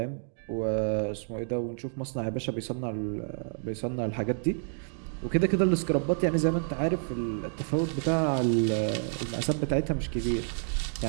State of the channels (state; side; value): silent; left; digital silence